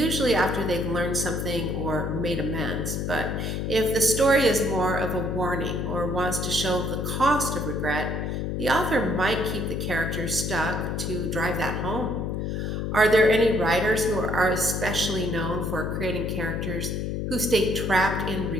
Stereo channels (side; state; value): left; noise; hum, 2 dB below the sound